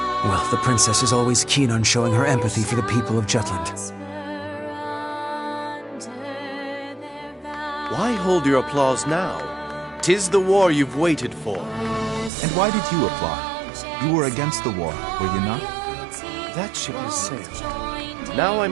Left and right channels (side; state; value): left; drops out; at 12.3 s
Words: Well, the princess is always keen on showing her empathy for the people of Jutland. Why hold your applause now? 'Tis the war you've waited for. And why did you applaud? You were against the war, were you not? That ship has sailed. Now I